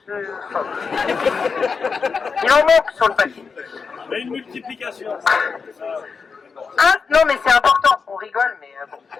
phobes. Il en manque sur le papier. Mais une multiplication. Non mais c'est important, on rigole mais bon.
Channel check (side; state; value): right; quieter; 5.3 dB